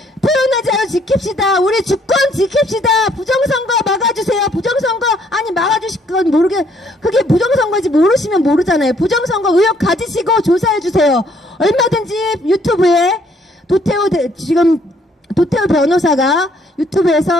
표현의 자유 지킵시다. 우리 주권 지킵시다. 부정선거 막아주세요. 부정선거, 아니 막아주실 건 그게 부정선거인지 모르시면 모르잖아요. 부정선거 의혹 가지시고 조사해주세요. 얼마든지 유튜브에 도태우 변호사가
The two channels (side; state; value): both; normal; correlation 0.66